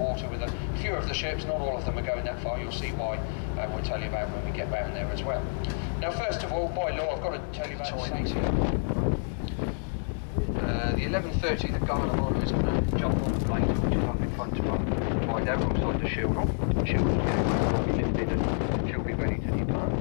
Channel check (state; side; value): silent; right; digital silence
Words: with a few of the ships. Not all of them are going that far, you'll see why, and we'll tell you about when we get round there as well. Now, first of all, by law, I've got to tell you about safety. The 11:30, the guard of honour is going to jump on the blade, which is up in front of our hideout alongside the shield hall. The shield hall's gateway will be lifted and she'll be ready to depart.